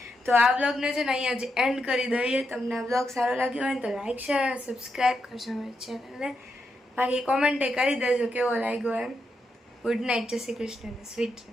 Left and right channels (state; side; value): normal; both; correlation 0.83